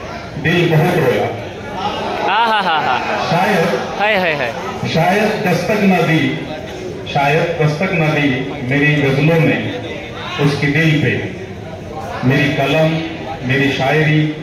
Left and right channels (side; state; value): both; identical; correlation 1.00